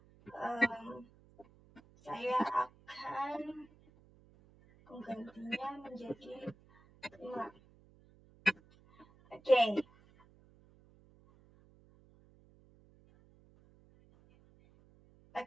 saya akan menggantinya menjadi 5. Oke.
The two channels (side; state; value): right; noise; hum, 27 dB below the sound